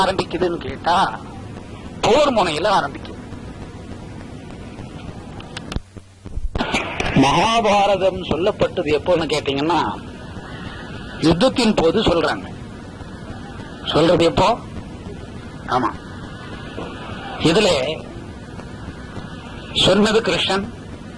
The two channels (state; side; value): identical; both; correlation 1.00